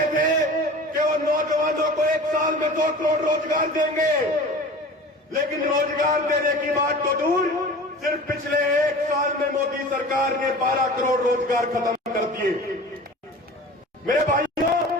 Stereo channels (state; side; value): normal; both; correlation 0.39